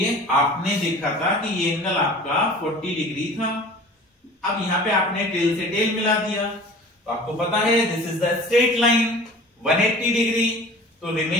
आपने देखा था कि ये एंगल आपका 40 डिग्री था, अब यहाँ पे आपने टेल से टेल मिला दिया, तो आपको पता है this is the straight line 180 degree. तो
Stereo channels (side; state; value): both; normal; correlation 0.43